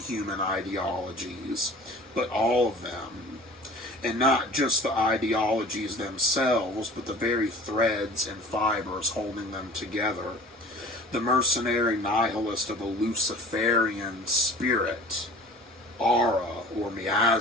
human ideologies, but all of them. And not just the ideologies themselves, but the very threads and fibers holding them together. The mercenary nihilist of the Luciferian spirit, aura or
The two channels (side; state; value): both; normal; correlation 0.44